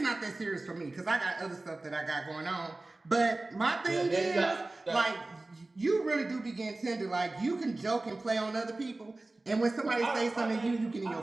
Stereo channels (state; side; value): quieter; left; 3.0 dB